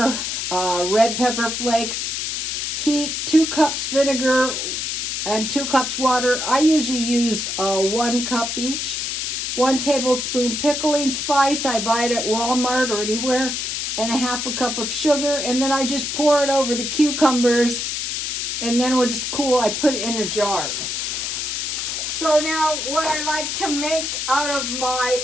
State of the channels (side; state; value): left; noise; hiss, 2 dB below the sound